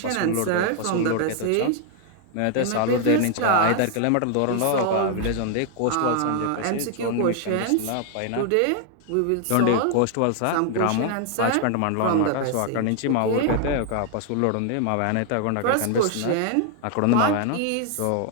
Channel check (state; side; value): different; both; correlation 0.00